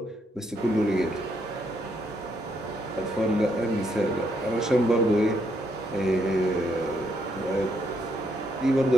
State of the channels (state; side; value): normal; both; correlation 0.75